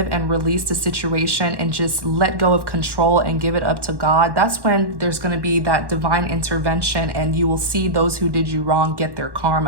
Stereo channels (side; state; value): left; late; 1.1 ms